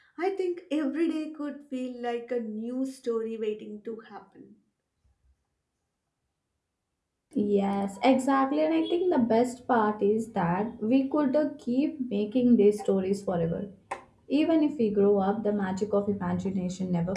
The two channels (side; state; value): both; identical; correlation 1.00